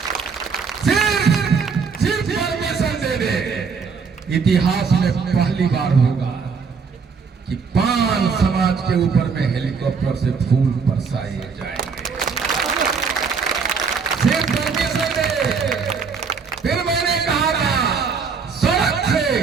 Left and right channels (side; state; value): left; quieter; 5.5 dB